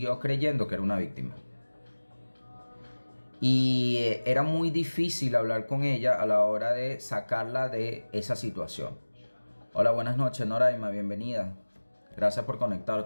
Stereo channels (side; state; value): both; inverted; correlation -1.00